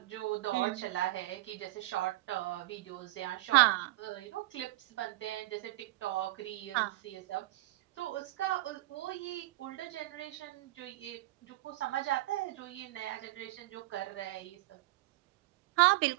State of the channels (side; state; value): left; quieter; 18.7 dB